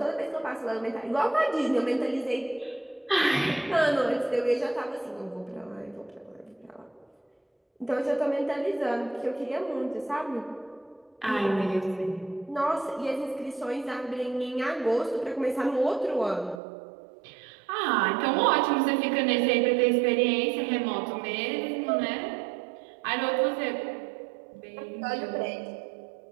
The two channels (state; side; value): drops out; left; at 16.6 s